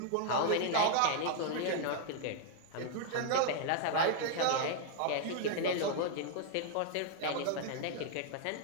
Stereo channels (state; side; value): different; both; correlation -0.01